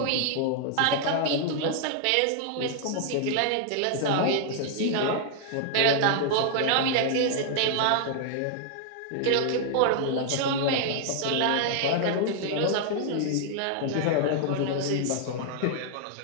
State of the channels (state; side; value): different; both; correlation 0.00